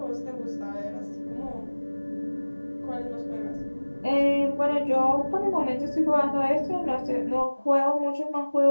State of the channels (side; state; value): both; inverted; correlation -1.00